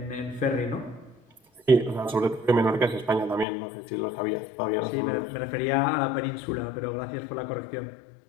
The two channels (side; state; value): right; drops out; at 3.5 s